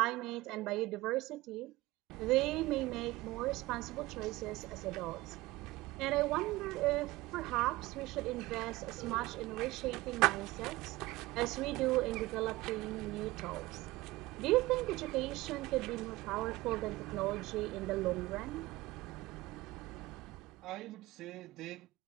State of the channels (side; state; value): left; quieter; 19.3 dB